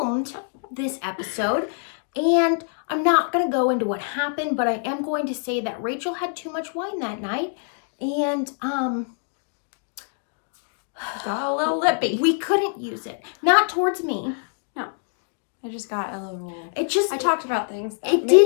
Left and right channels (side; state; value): right; silent; 62 dB below the other